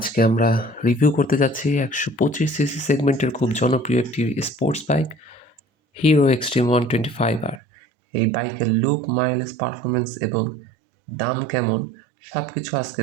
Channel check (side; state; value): left; drops out; at 7.6 s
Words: আমরা রিভিউ করতে যাচ্ছি 125 সিসি সেগমেন্টের খুব জনপ্রিয় একটি sports bike, hero extreme 125R। এই বাইকের লুক, মাইলেজ, পারফরমেন্স এবং দাম কেমন সব কিছু